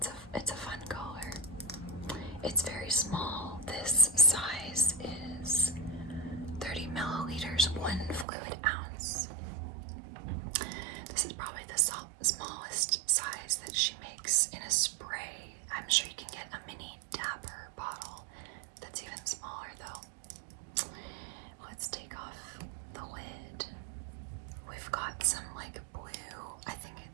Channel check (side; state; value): left; drops out; at 8.2 s